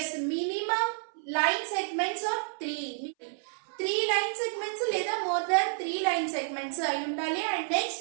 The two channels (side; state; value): left; silent; 58 dB below the other